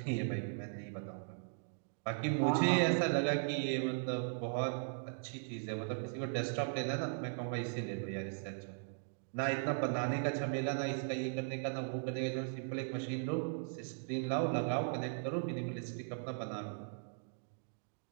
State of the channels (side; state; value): left; silent; digital silence